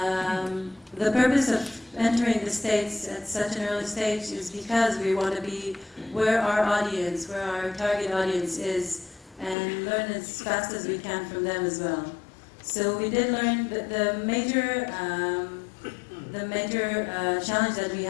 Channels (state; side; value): drops out; right; at 9.6 s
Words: The purpose of entering the States at such an early stage is because we want to be where our audience, where our target audience is, and learn as fast as we can from them as well. So we did learn that the major challenge that we